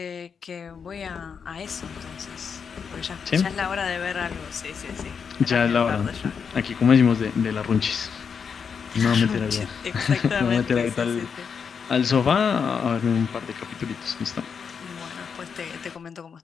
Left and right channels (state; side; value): quieter; right; 6.4 dB